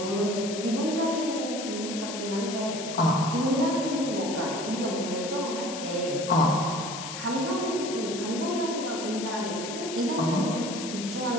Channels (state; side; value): noise; left; hiss, 8 dB below the sound